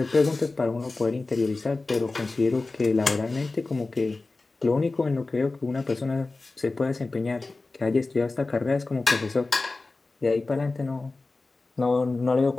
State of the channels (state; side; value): quieter; right; 3.4 dB